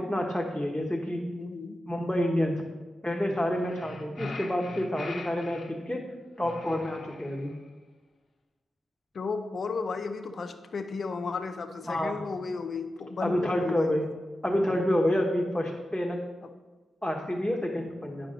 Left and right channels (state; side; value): normal; both; correlation 0.92